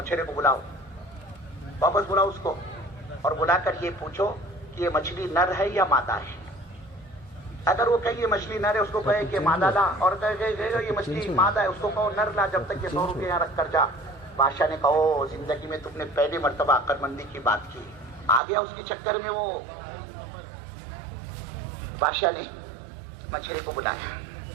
کو بلاؤ, واپس بلاؤ اس کو, اور بلا کر یہ پوچھو کہ یہ مچھلی نر ہے یا مادہ ہے. اگر وہ کہے یہ مچھلی نر ہے, اس کو کہے کہ مادہ لا, اور کہے یہ مچھلی مادہ ہے, اس کو کہو نر لا, جب تک یہ 100 روپے یہاں رکھ کر جا. بادشاہ نے کہو زندگی میں تم نے پہلی مرتبہ عقل مندی کی بات کی. آ گیا اس کے چکر میں وہ. بادشاہ نے مچھلی کو بلایا,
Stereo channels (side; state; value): left; drops out; at 18.4 s